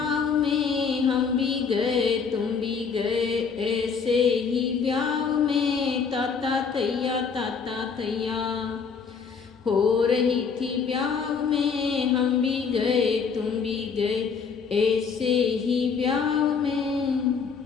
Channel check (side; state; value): right; quieter; 5.8 dB